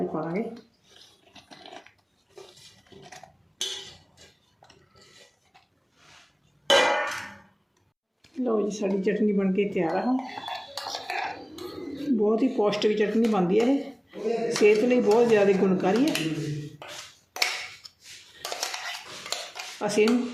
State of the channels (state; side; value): identical; both; correlation 1.00